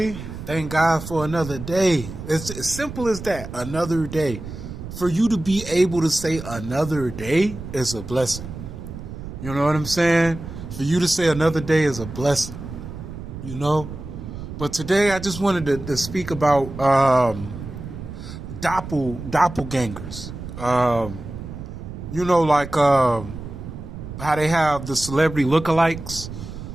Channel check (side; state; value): right; noise; rumble, 10 dB below the sound